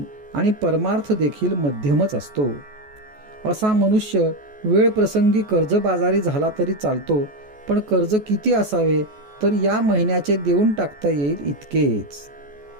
आणि परमार्थ देखील मध्यमच असतो. असा मनुष्य वेळ प्रसंगी कर्जबाजारी झाला तरी चालतो, पण कर्ज किती असावे, तर या महिन्याचे देऊन टाकता येईल इतकेच.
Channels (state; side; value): late; left; 14 ms